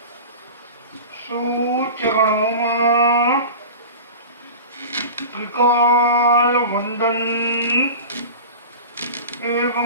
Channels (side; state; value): both; inverted; correlation -0.33